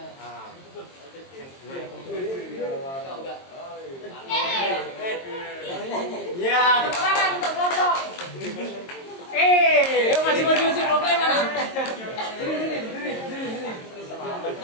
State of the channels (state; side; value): late; right; 22 ms